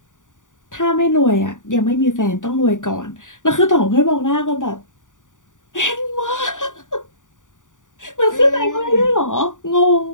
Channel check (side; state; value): right; late; 0.87 ms